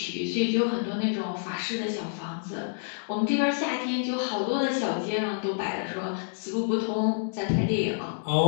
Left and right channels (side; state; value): right; silent; digital silence